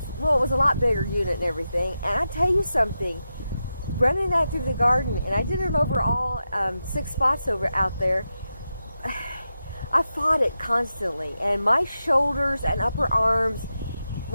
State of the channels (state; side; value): inverted; both; correlation -0.89